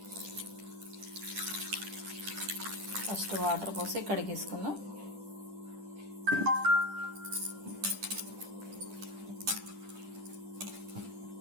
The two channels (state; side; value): late; left; 10 ms